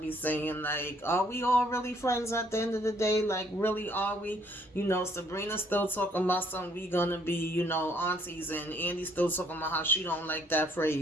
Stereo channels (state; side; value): normal; both; correlation 0.65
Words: saying. Like, are we all really friends at the end of the day? Like, really, are we? Sabrina's still talking about something we gonna be, aunties, and Andy's still talking about how she don't like that